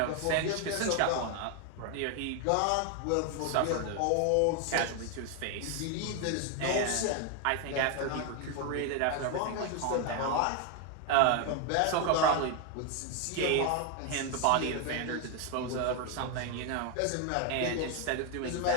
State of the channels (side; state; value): both; different; correlation 0.01